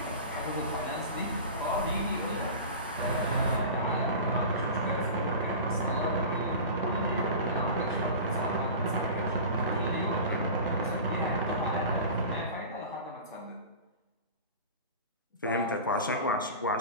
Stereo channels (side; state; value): both; inverted; correlation -0.34